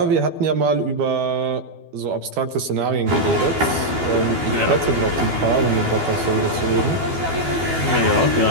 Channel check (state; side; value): late; left; 12 ms